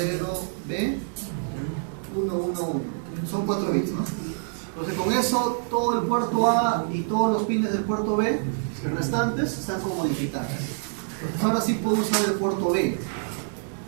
Son 4 bits, ¿no? Entonces con eso todo el puerto A y todos los pines del puerto B restantes están como digitales. Entonces ahora sí puedo usar el puerto B.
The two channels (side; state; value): left; silent; 61 dB below the other